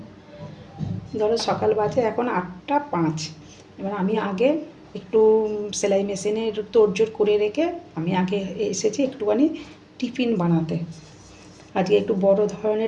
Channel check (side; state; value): both; identical; correlation 1.00